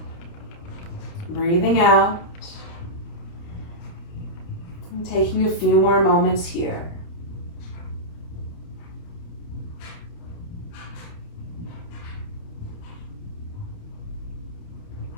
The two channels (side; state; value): right; late; 29 ms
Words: breathing out. And taking a few more moments here.